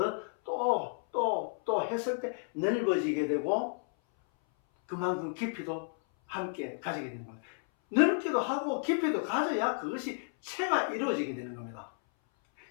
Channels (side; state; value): right; silent; 56 dB below the other